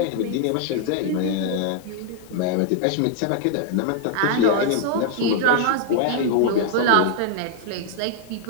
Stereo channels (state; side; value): different; both; correlation 0.00